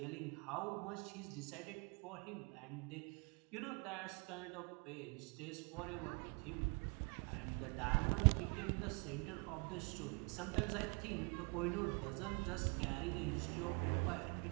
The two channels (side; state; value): left; quieter; 33.5 dB